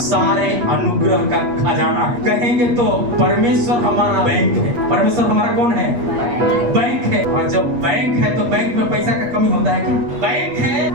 सारे अनुग्रह का खजाना है। कहेंगे तो परमेश्वर हमारा बैंक है। परमेश्वर हमारा कौन है? बैंक है। और जब बैंक है तो बैंक में पैसा का कमी होता है क्या? बैंक है,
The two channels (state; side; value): late; left; 8.4 ms